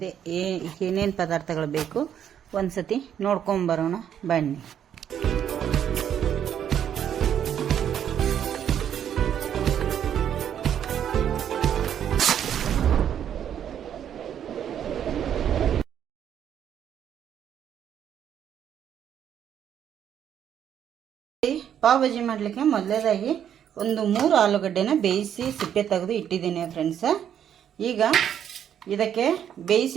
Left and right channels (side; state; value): left; quieter; 9.4 dB